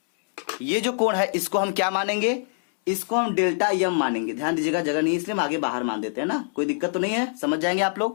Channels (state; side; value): silent; right; 62 dB below the other